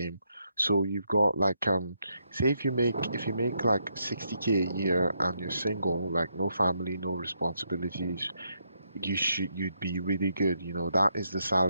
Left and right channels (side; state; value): both; inverted; correlation -0.78